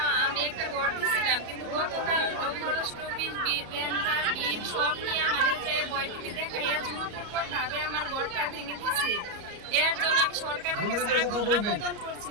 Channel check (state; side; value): late; left; 34 ms